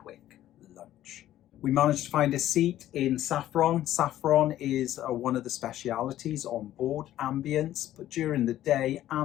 lunch. We managed to find a seat in saffron. Saffron is one of the specialities on board Ambience, but during the day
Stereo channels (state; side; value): quieter; right; 13.1 dB